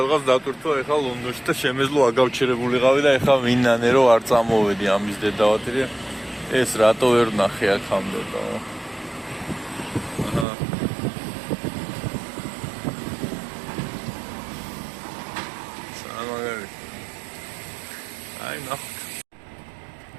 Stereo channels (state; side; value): drops out; left; at 10.5 s